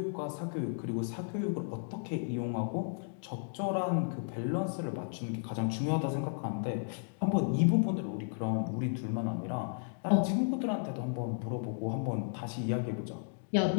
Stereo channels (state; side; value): silent; right; digital silence